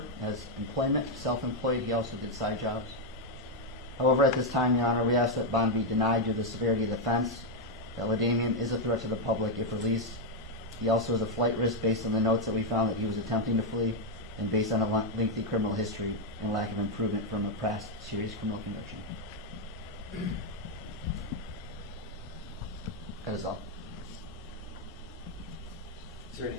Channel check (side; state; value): both; normal; correlation 0.01